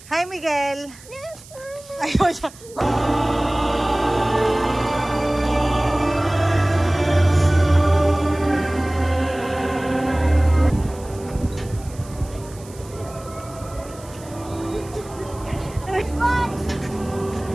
Hi, Miguel! Ayun siya!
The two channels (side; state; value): right; noise; hiss, 21 dB below the sound